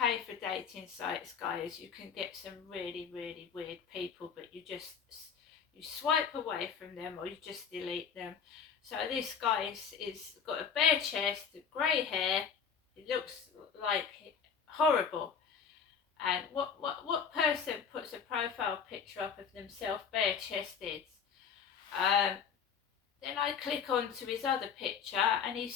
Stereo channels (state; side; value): quieter; right; 6.9 dB